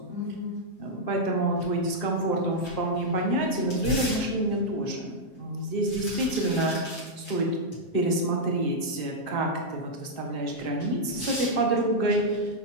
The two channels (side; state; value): right; late; 7.5 ms